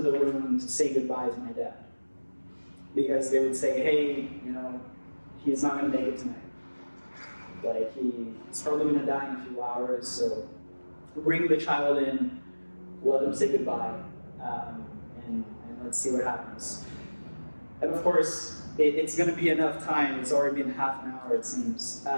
the room to say goodbye to my dad. Because they would say, hey, he's not going to make it tonight. He's probably going to die in a few hours, so bring the child in, let him say goodbye, and let's see what happens. And of course, it's going to be enough time. It's already been half an hour, it seems.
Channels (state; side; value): inverted; both; correlation -1.00